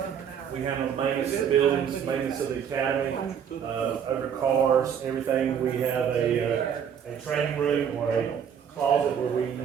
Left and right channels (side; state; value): left; quieter; 8.0 dB